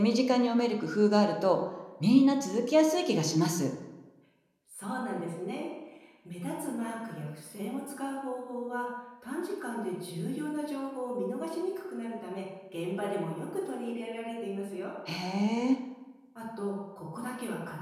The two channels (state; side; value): identical; both; correlation 1.00